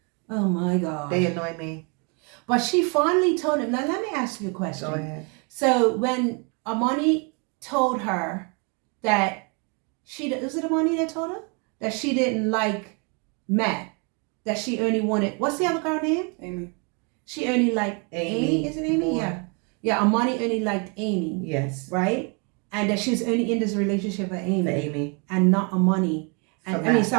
Oh my God. They annoy me. But she finally told him. Now let me ask you a question. Go ahead. So when Armani told her that was it Armani that told her that she didn't like Matt, that she only wanted, what's the other girl name? Amy. She only liked Amy. Is it Amy? More. Yeah. Yeah, Armani only liked Amy. Yes. Right? And that she was only in this relationship for Amy. For Amy. And not Armani. And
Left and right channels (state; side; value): quieter; left; 34.5 dB